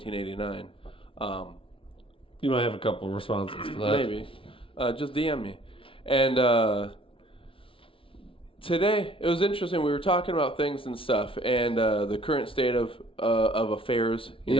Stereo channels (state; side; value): late; right; 0.26 ms